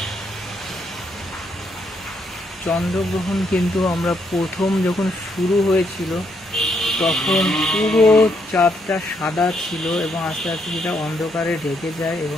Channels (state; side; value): normal; both; correlation 0.75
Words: চন্দ্রগ্রহণ কিন্তু আমরা প্রথম যখন শুরু হয়েছিল তখন পুরো চাঁদটা সাদা ছিল এবং আস্তে আস্তে সেটা অন্ধকারে ঢেকে যায়